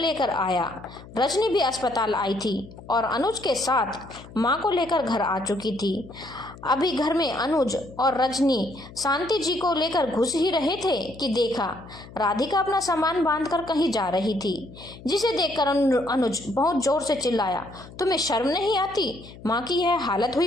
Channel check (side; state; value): left; noise; hum, 18 dB below the sound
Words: आया। रजनी भी अस्पताल आई थी और अनुज के साथ माँ को लेकर घर आ चुकी थी। अभी घर में अनुज और रजनी शांति जी को लेकर घुस ही रहे थे कि देखा राधिका अपना सामान बांधकर कहीं जा रही थी, जिसे देखकर अनुज बहुत जोर से चिल्लाया, तुम्हें शर्म नहीं आती? माँ की यह हालत